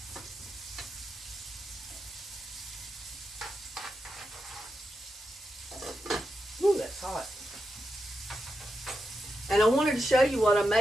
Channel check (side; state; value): both; normal; correlation 0.87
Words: And I wanted to show you what I